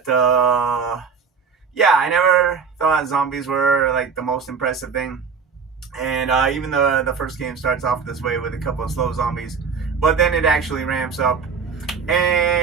yeah, I never thought zombies were like the most impressive thing. And even though the first game starts off this way with a couple of slow zombies, but then it actually ramps up.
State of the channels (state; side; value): quieter; left; 5.8 dB